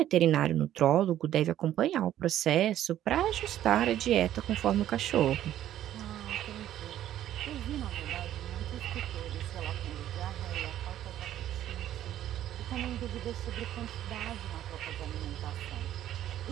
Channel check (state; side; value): quieter; left; 12.1 dB